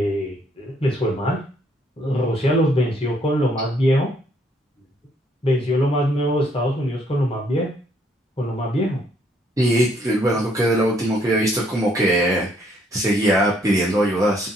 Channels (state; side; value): normal; both; correlation 0.68